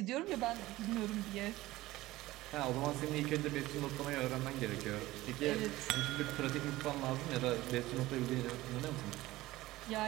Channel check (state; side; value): quieter; left; 17.5 dB